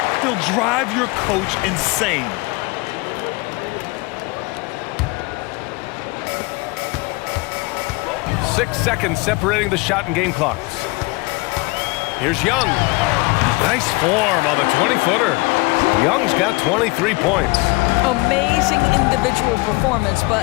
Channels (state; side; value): quieter; right; 25.4 dB